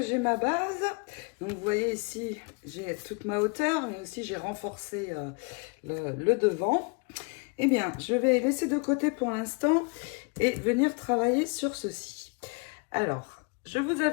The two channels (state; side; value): quieter; right; 32.4 dB